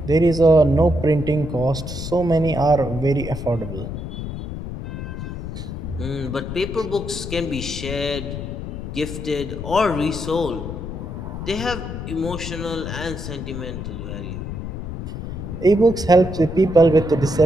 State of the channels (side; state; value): left; noise; rumble, 7 dB below the sound